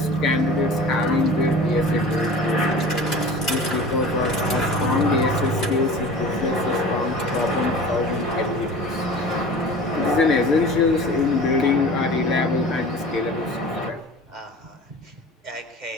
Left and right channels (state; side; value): normal; both; correlation 0.39